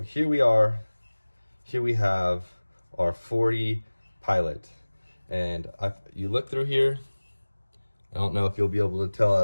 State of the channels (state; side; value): inverted; both; correlation -1.00